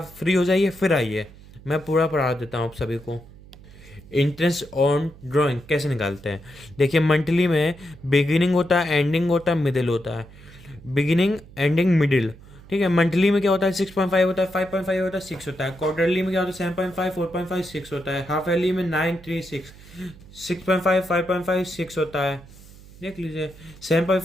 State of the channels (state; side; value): noise; right; hum, 21 dB below the sound